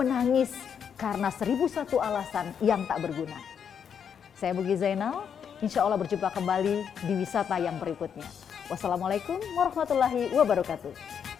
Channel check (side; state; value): right; quieter; 7.6 dB